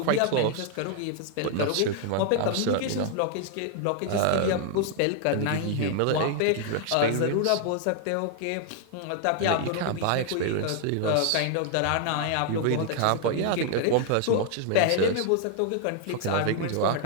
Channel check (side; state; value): both; different; correlation 0.00